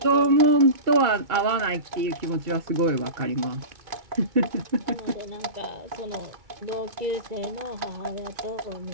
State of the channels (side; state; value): left; late; 2.3 ms